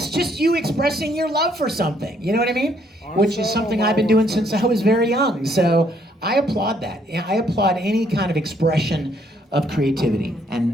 just you expressing your love for something. You know what I mean? Which is something I've been doing since I was very young. So I applaud that. I applaud any kind of expression of creativity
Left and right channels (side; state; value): both; normal; correlation 0.68